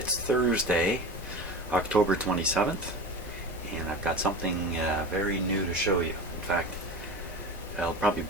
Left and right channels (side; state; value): both; normal; correlation 0.30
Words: Thursday, October 27th, and I've got something very new to show you. In fact, it'll probably